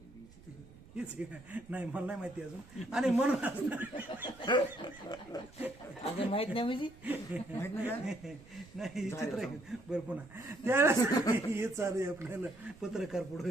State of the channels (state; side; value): noise; right; rumble, 22 dB below the sound